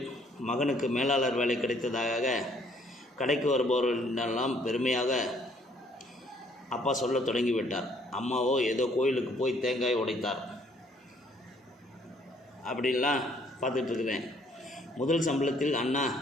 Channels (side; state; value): both; normal; correlation 0.63